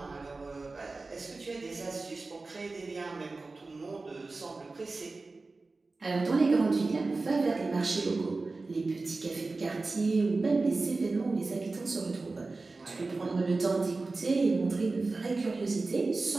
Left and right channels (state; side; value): quieter; left; 3.6 dB